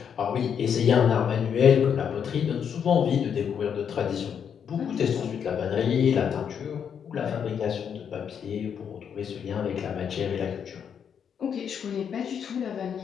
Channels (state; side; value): quieter; right; 7.7 dB